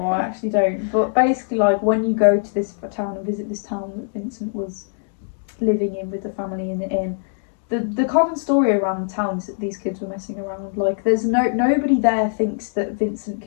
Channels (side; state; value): right; silent; digital silence